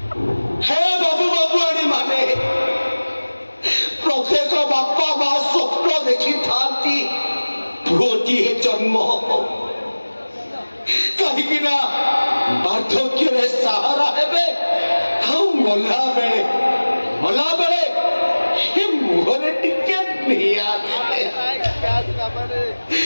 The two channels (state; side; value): inverted; both; correlation -1.00